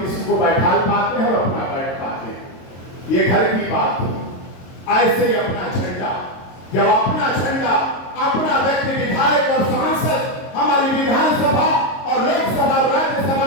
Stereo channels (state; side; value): late; right; 22 ms